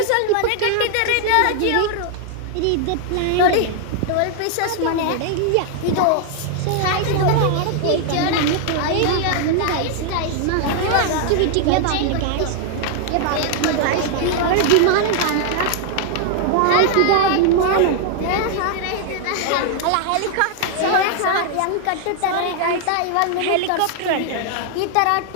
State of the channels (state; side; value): different; both; correlation 0.00